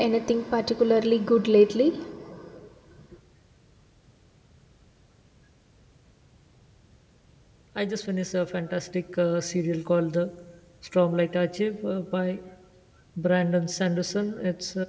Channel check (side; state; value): both; identical; correlation 1.00